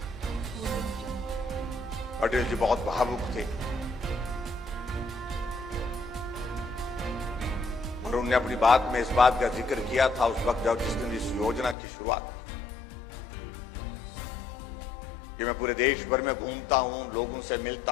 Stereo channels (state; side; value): drops out; right; at 11.8 s